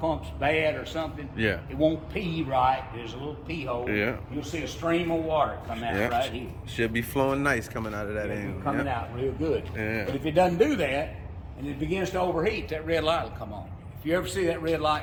bad or something, it won't pee right. There's a little pee hole. Yeah. You'll see a stream of water come out right here. Should be flowing nice coming out of that end. Coming out real good. Yeah. But if it doesn't do that and it begins to overheat, that red light will come on. If you ever see that red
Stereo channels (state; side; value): identical; both; correlation 1.00